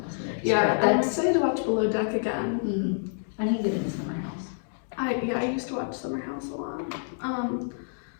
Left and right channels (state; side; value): silent; right; digital silence